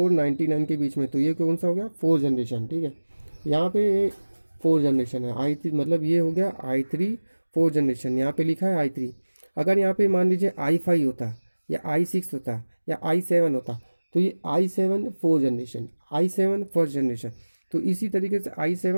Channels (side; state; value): both; inverted; correlation -1.00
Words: के बीच में, तो ये कौन सा हो गया, 4 जनरेशन, ठीक है। यहाँ पे 4 जनरेशन है i3, मतलब ये हो गया i3 4 जनरेशन, यहाँ पे लिखा है i3। अगर यहाँ पे मान लीजिए i5 होता या i6 होता या i7 होता तो ये i7 4 generation, i7 first generation. तो इसी तरीके से